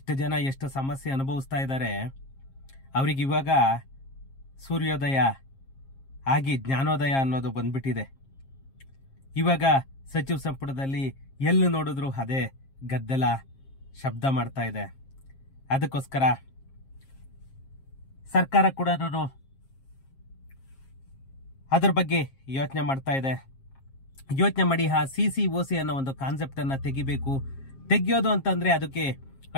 ಜನ ಎಷ್ಟು ಸಮಸ್ಯೆ ಅನುಭವಿಸ್ತಾ ಇದ್ದಾರೆ. ಅವ್ರಿಗೆ ಇವಾಗ ಸೂರ್ಯೋದಯ ಆಗಿ ಜ್ಞಾನೋದಯ ಅನ್ನೋದು ಬಂದ್ಬಿಟ್ಟಿದೆ. ಇವಾಗ ಸಚಿವ ಸಂಪುಟದಲ್ಲಿ ಎಲ್ಲಿ ನೋಡಿದ್ರು ಅದೇ ಗದ್ದಲ ಶಬ್ದ ಮಾಡ್ತಾ ಇದೆ. ಅದಕ್ಕೋಸ್ಕರ ಸರ್ಕಾರ ಕೂಡ ಅದರ ಬಗ್ಗೆ ಯೋಚನೆ ಮಾಡ್ತಾ ಇದೆ. ಯೋಚನೆ ಮಾಡಿ ಆ CCOC ಅನ್ನೋ ಒಂದು ಕಾನ್ಸೆಪ್ಟ್ ಅನ್ನ ತೆಗಿಬೇಕು. ತೆಗಿಯೋದು ಅಂತಂದ್ರೆ ಅದಕ್ಕೆ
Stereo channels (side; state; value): right; late; 7.4 ms